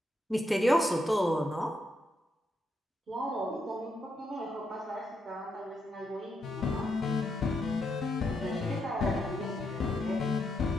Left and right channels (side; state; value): both; normal; correlation 0.80